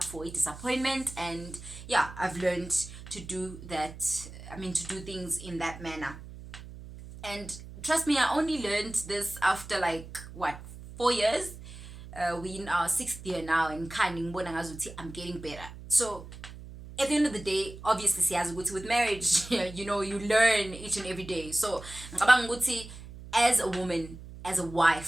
for a disappointment, and yeah, I've learned to do that. To do things in that manner. And trust me, I only learned this after 4 years. We in our 6th year now, and I'm getting better. So at the end of the day, obviously, with marriage, you learn each and every day. So as a woman, as a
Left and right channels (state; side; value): noise; right; hum, 14 dB below the sound